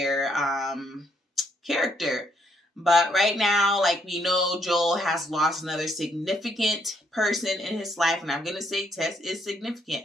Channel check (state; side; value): normal; both; correlation 0.72